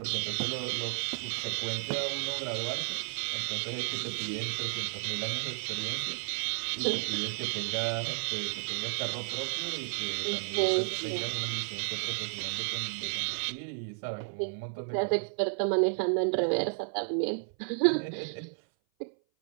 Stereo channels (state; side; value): silent; left; 56 dB below the other